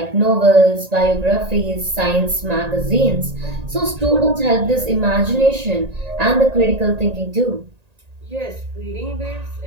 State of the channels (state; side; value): late; left; 1.8 ms